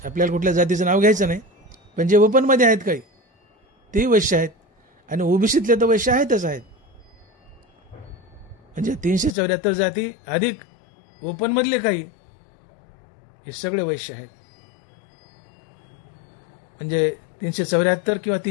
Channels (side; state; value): right; drops out; at 9.3 s